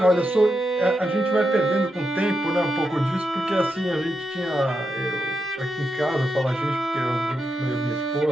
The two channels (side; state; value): both; normal; correlation 0.85